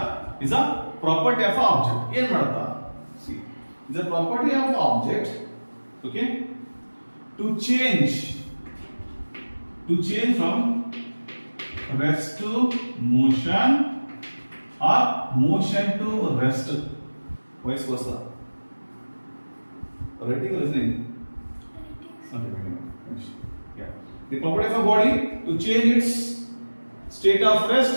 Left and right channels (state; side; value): inverted; both; correlation -1.00